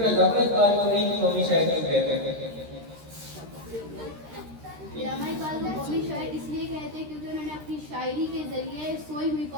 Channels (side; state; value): left; late; 13 ms